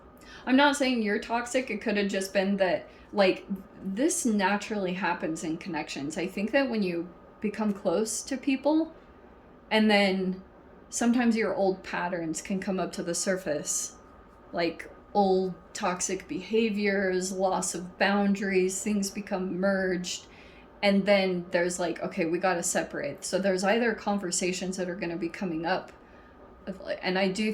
not saying you're toxic. It could have just been that, like, this naturally happens in connections. I think that when you become close to people, and then sometimes your old patterns can come up to the surface, like old toxic behaviors, loss of boundaries, things become merged, And then there's like, okay, we got to separate. So there's either conversations that are going to be coming up, and I do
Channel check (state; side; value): identical; both; correlation 1.00